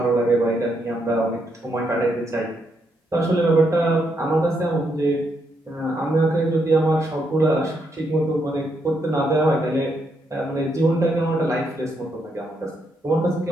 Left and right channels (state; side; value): normal; both; correlation 0.78